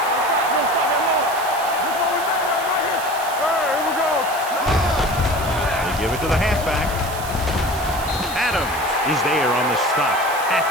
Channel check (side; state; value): right; noise; hiss, 12 dB below the sound